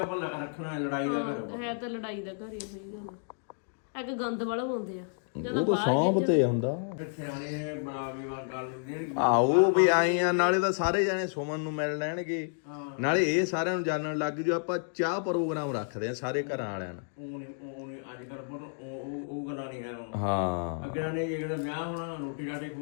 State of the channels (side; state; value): right; silent; digital silence